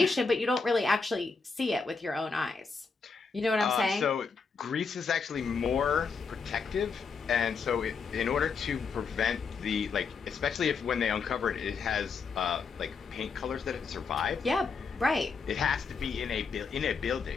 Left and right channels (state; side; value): quieter; right; 5.0 dB